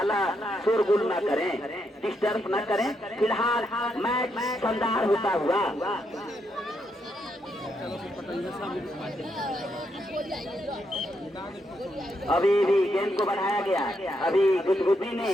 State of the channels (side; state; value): both; normal; correlation 0.79